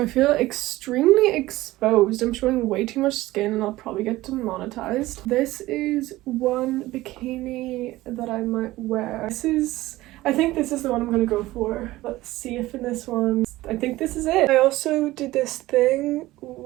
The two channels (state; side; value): quieter; left; 17.6 dB